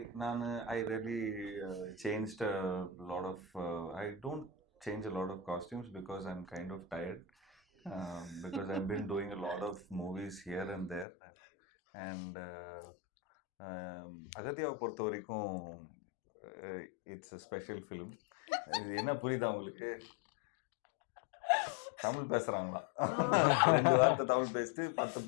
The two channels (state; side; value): drops out; right; at 11.1 s